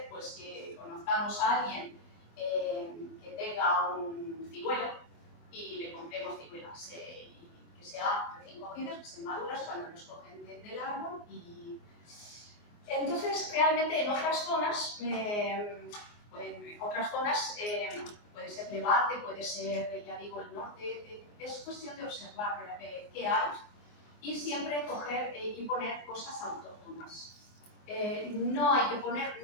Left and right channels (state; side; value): late; right; 24 ms